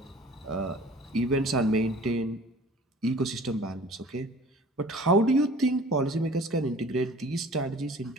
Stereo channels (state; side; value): normal; both; correlation 0.47